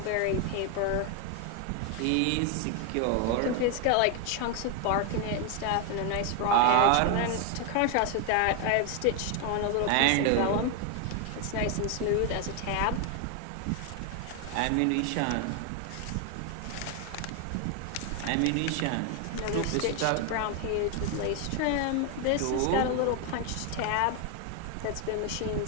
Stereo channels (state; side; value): different; both; correlation 0.01